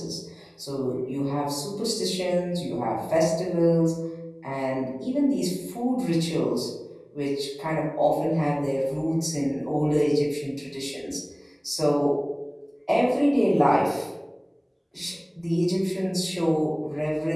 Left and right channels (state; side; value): identical; both; correlation 1.00